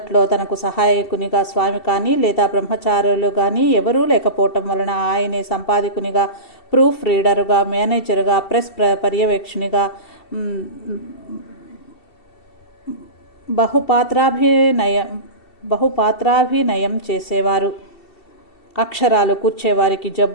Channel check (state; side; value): late; right; 2.7 ms